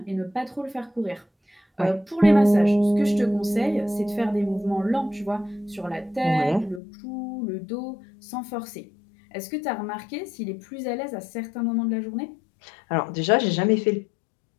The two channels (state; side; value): drops out; right; at 6.8 s